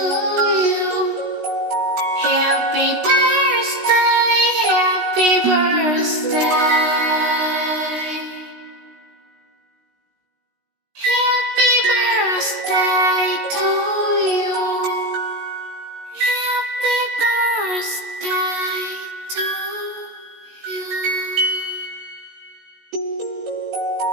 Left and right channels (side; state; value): left; late; 16 ms